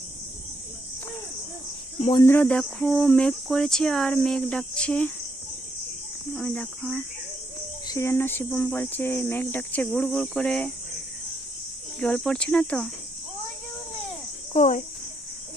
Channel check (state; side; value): normal; both; correlation 0.77